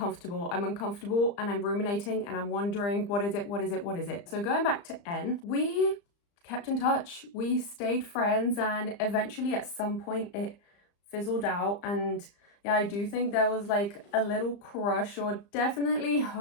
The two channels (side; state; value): right; late; 35 ms